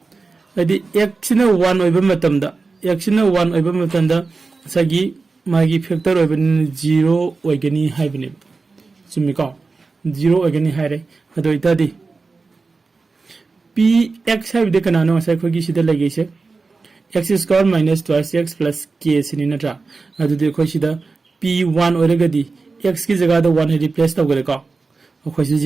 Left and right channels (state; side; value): quieter; left; 4.1 dB